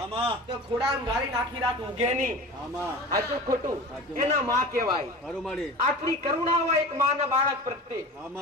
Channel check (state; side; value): normal; both; correlation 0.34